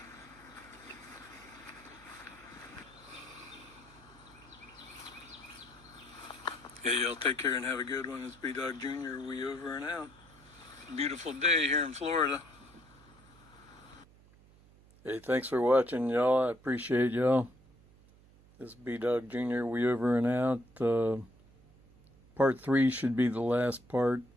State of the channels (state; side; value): noise; right; hum, 26 dB below the sound